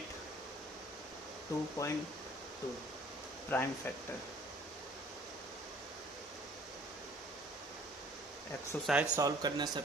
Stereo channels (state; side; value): normal; both; correlation 0.54